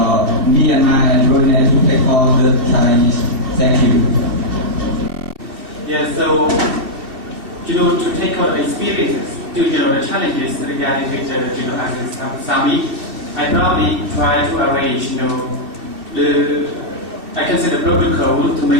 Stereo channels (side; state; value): left; late; 2.6 ms